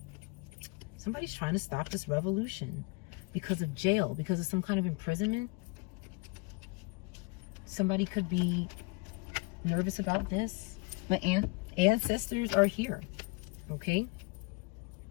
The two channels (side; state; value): right; quieter; 27.5 dB